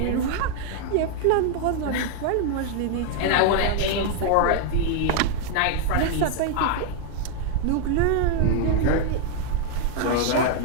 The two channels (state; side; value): different; both; correlation 0.00